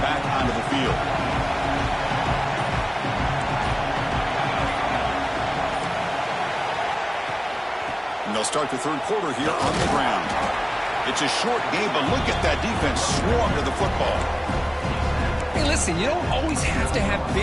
onto the field. They'll start the third quarter here on the ground. It's a short game, but look at that defense swarm to the football. Hey, listen. listen, you don't always have to have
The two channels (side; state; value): both; identical; correlation 1.00